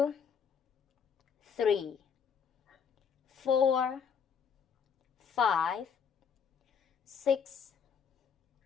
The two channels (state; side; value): quieter; right; 6.9 dB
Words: 3, 4, 5, 6,